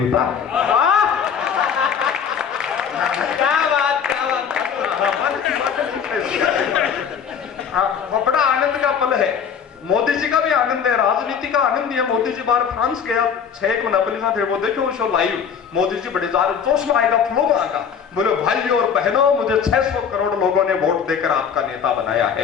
बड़ा आनंद का पल है मोदी जी का भी आनंद है राजनीति का आनंद है मोदी जी बाहर फ्रांस गया 6 महीना पहले थे वो देखो शो लाइव मोदी जी बड़े जार जोश में आएगा फ्लो में आएगा बोले भाइयों और बहनों मुझे 600 करोड़ लोगों ने वोट देकर आपका नेता बनाया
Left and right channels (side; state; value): right; quieter; 7.3 dB